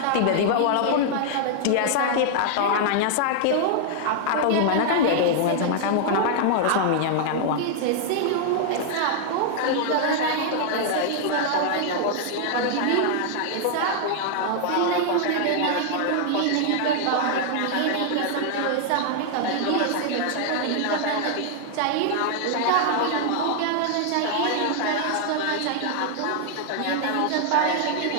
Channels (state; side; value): different; both; correlation 0.00